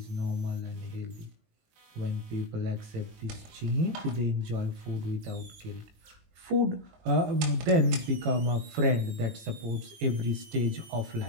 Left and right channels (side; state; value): left; late; 19 ms